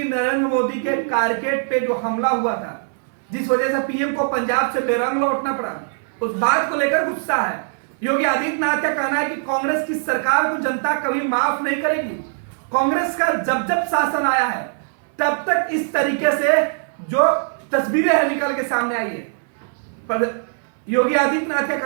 नरेंद्र मोदी के कारकेड पे जो हमला हुआ था, जिस वजह से पीएम को पंजाब से बेरंग लौटना पड़ा, उस बात को लेकर गुस्सा है। योगी आदित्यनाथ का कहना है कि कांग्रेस की सरकार को जनता कभी माफ नहीं करेगी। कांग्रेस का जब जब शासन आया है तब तक इस तरीके से जो तस्वीरें हैं निकल के सामने आई है। पर योगी आदित्यनाथ का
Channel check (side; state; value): left; silent; digital silence